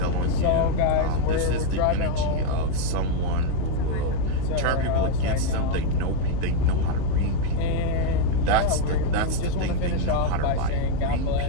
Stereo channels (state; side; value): different; both; correlation 0.01